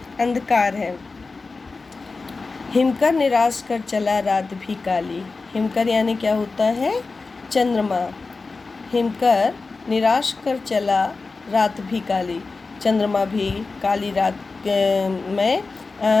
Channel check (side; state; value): right; quieter; 4.0 dB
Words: अंधकार है। हिमकर निराश कर चला रात भी काली। हिमकर यानी क्या होता है? चंद्रमा। हिमकर निराश कर चला रात भी काली, चंद्रमा भी काली रात में